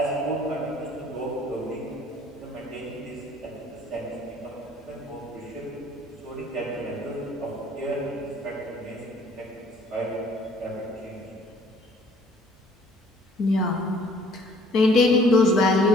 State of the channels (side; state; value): both; normal; correlation 0.57